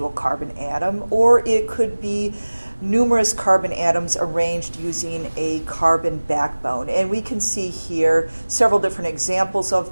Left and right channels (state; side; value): inverted; both; correlation -1.00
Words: carbon atom, or it could be numerous carbon atoms arranged using a carbon backbone. And we can see here several different examples